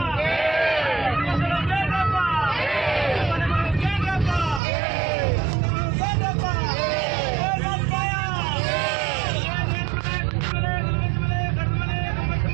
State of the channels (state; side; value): drops out; left; at 4.6 s